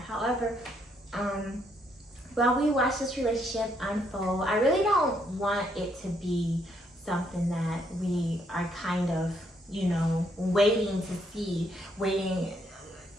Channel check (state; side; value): normal; both; correlation 0.73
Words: while we watch this relationship unfold, I really don't want it to be something that we are kind of, you know, waiting